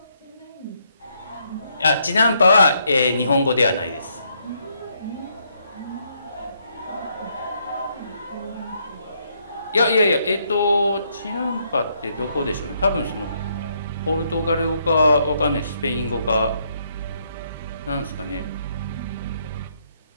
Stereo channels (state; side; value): inverted; both; correlation -0.74